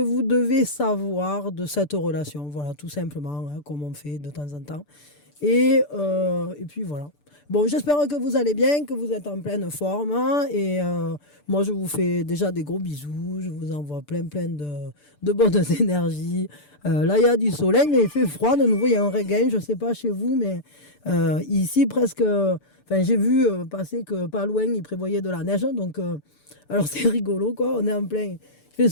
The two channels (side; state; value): right; late; 6.8 ms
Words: devez savoir de cette relation. Voilà, tout simplement, hein, comme on fait de temps en temps. Et puis voilà. Bon, j'espère que vous allez bien, que vous êtes en pleine forme, hein. Moi, je vous fais déjà des gros bisous. Je vous envoie plein de bonnes énergies. Là, il y a du soleil, mais il fait froid. De nouveau, il y a un regain. Je ne sais pas chez vous, mais ici, presque. Enfin, j'ai vu passer que pas loin, il prévoyait de la neige. Donc, alors, c'est rigolo, quoi. On est en plein. Il fait